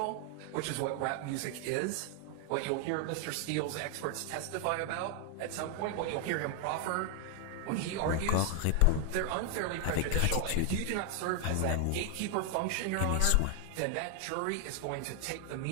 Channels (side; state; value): both; different; correlation 0.00